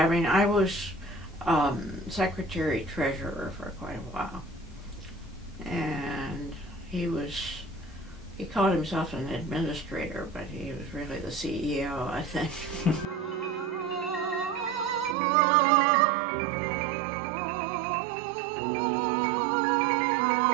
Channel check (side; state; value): left; drops out; at 15.2 s